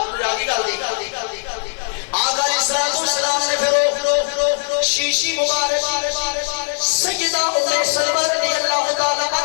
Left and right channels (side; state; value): right; silent; 66 dB below the other